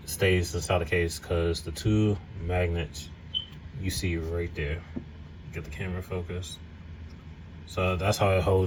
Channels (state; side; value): identical; both; correlation 1.00